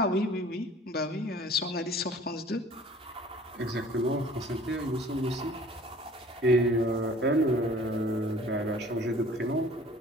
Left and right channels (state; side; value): normal; both; correlation 0.49